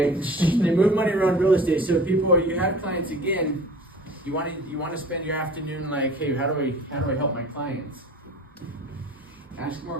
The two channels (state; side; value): normal; both; correlation 0.42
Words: they move money around real estate. So people, you have clients again. You want to spend your afternoon like, hey, how do I help my clients? Ask more